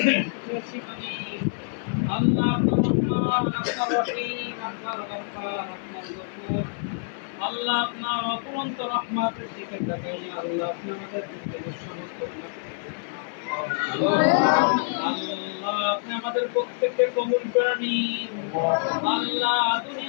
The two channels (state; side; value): silent; right; 61 dB below the other